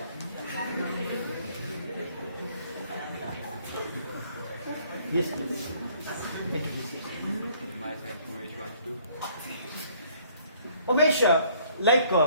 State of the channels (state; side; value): inverted; both; correlation -0.61